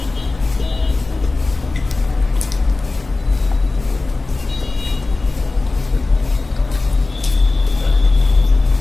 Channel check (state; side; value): quieter; right; 3.4 dB